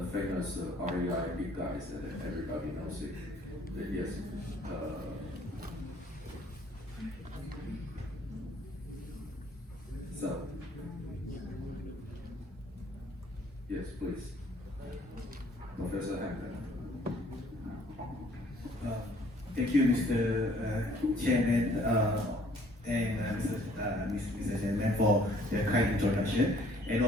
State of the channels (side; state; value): both; normal; correlation 0.59